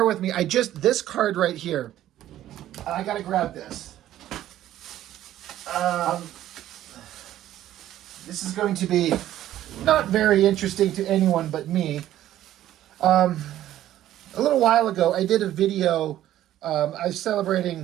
with me. This card right here, I got to grab this. This is going to be not very interesting to anyone but me. A little while ago, I did a video. I was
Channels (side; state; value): left; quieter; 12.9 dB